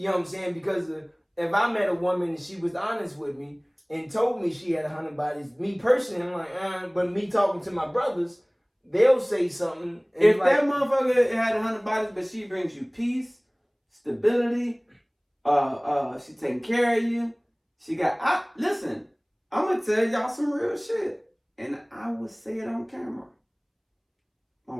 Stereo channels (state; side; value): identical; both; correlation 1.00